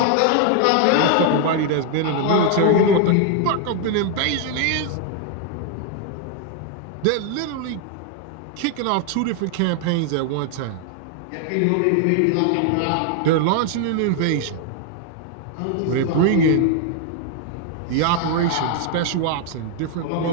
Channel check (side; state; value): both; different; correlation 0.00